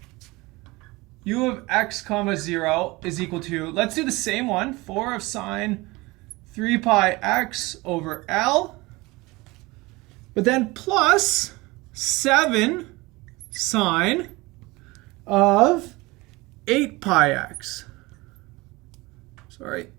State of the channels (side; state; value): left; quieter; 22.6 dB